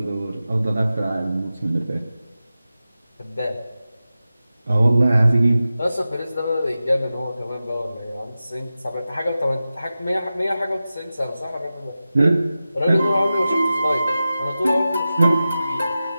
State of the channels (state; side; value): inverted; both; correlation -0.94